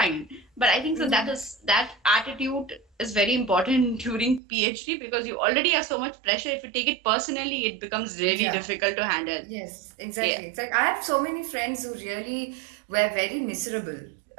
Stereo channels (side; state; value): left; drops out; at 4.4 s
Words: But I think so that attitude is very important during PhD because you already have so much pressure. If you take it personally, it becomes really Yeah. difficult to handle. Yes, Yeah, exactly. It's like I have so many friends who really were very miserable,